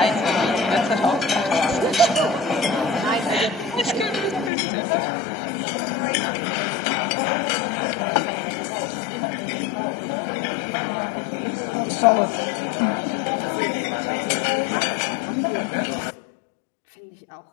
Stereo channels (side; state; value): right; drops out; at 4.5 s